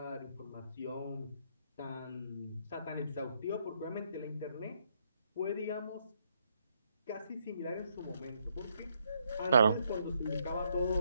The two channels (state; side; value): inverted; both; correlation -0.74